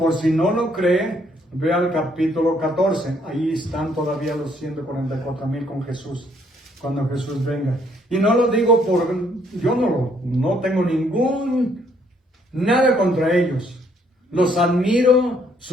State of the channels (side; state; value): both; normal; correlation 0.67